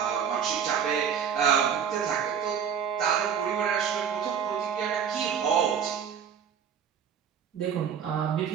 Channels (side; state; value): left; quieter; 7.7 dB